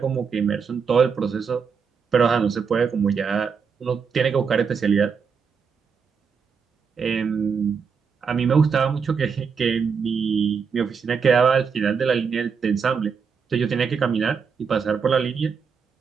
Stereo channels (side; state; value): left; quieter; 6.0 dB